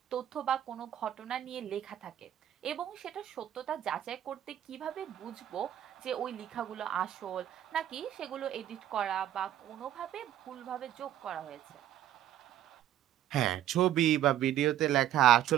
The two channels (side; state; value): left; quieter; 11.9 dB